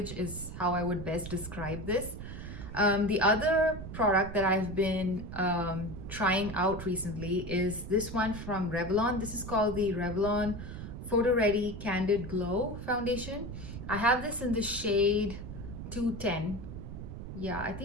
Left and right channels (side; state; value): right; noise; rumble, 9 dB below the sound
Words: is how I would best describe this. The other product that I've been trying out recently is this one from Revlon. This is called the Revlon Photo Ready Candid Glow Foundation. I have this in the shade 210. Yeah, I